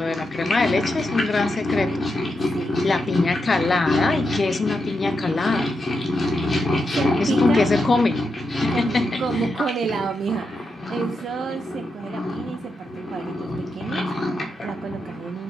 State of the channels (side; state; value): both; normal; correlation 0.86